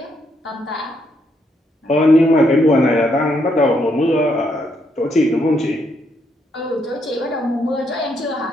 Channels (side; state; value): both; normal; correlation 0.76